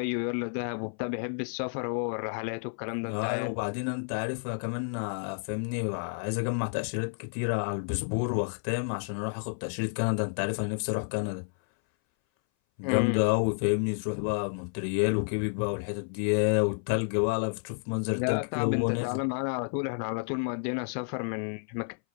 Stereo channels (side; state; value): right; silent; 58 dB below the other